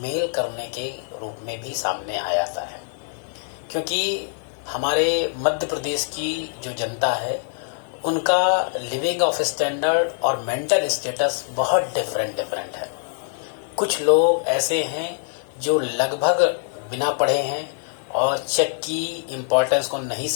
करने के रूप में भी सामने आ जाता है, क्योंकि हमारे मध्य प्रदेश की जो जनता है उनका लिविंग ऑफ स्टैंडर्ड और मेंटल स्टेटस बहुत डिफरेंट है। कुछ लोग ऐसे हैं जो लगभग बिना पढ़े हैं और चेक की इम्पोर्टेंस को नहीं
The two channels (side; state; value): right; silent; digital silence